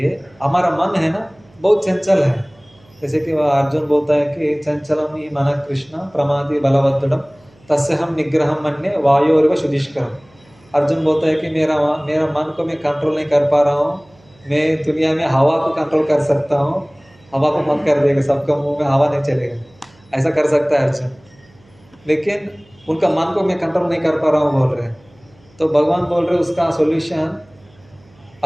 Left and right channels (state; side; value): noise; right; hum, 30 dB below the sound